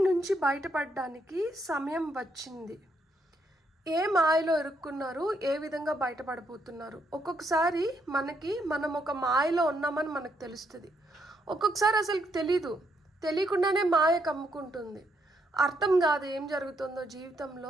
నుంచి బయటపడడానికి సమయం వచ్చింది. ఏ మాయలో ఇరుక్కున్నారు, ఏ విధంగా బయటపడబోతున్నారు. ఒక్కొక్కసారి మనం ఒక మాయలో ఉన్నామని మనకు తెలుస్తుంది. ఒక్కొక్కసారి అసలు తెలియకుండానే మాయ కమ్ముకుంటుంది. అర్థం కాదు ఏం జరుగుతుందో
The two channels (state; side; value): normal; both; correlation 0.76